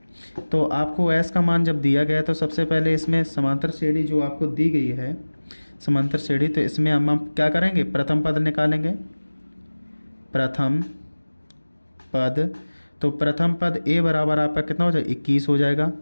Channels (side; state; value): both; inverted; correlation -1.00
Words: तो आपको एस का मान जब दिया गया तो सबसे पहले इसमें समांतर श्रेणी जो आपको दी गई है, समांतर श्रेणी, तो इसमें हम क्या करेंगे? प्रथम पद निकालेंगे। प्रथम पद, तो प्रथम पद ए बराबर आपका कितना हो जाएगा? 21 हो जाएगा।